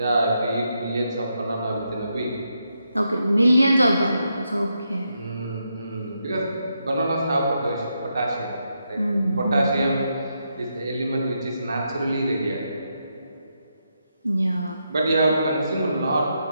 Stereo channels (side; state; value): both; inverted; correlation -0.82